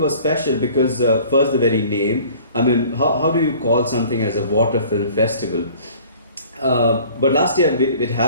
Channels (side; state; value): both; inverted; correlation -0.50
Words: special because first the very name. I mean, how do you call something as a water film festival? But last year it